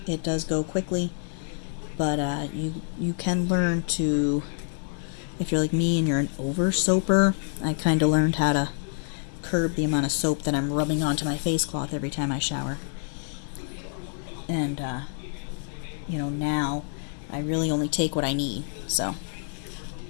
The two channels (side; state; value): right; silent; 60 dB below the other